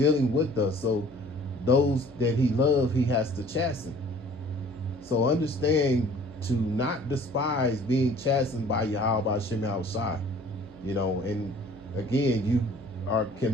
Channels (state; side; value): noise; right; hum, 20 dB below the sound